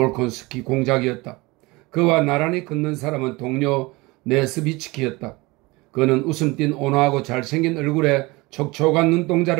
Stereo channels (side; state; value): left; quieter; 23.3 dB